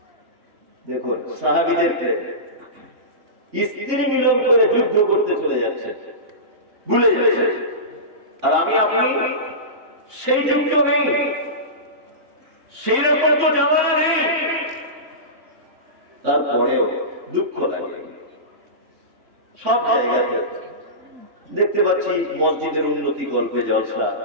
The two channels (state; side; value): late; left; 2.9 ms